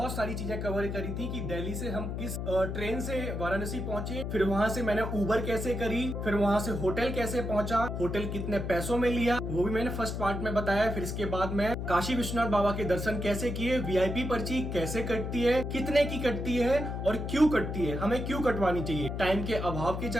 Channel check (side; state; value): left; noise; hum, 4 dB below the sound